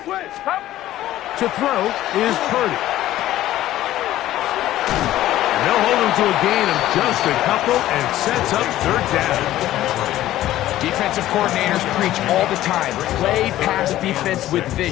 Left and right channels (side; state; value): right; quieter; 14.2 dB